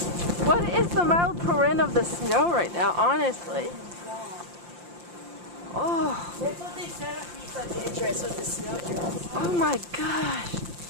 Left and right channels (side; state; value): left; late; 5.7 ms